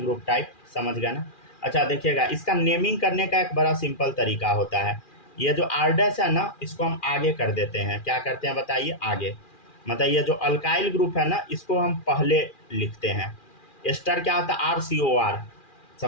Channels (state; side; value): late; right; 2.4 ms